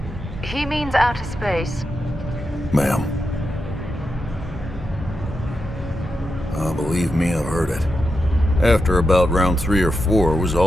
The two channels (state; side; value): normal; both; correlation 0.87